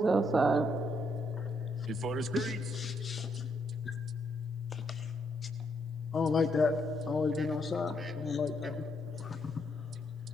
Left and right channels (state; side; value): normal; both; correlation 0.76